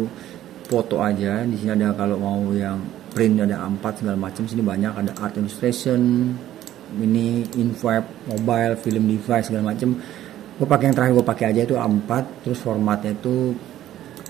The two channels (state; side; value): quieter; left; 12.8 dB